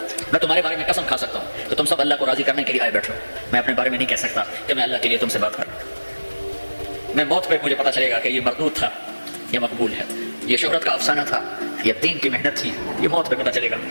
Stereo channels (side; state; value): both; inverted; correlation -1.00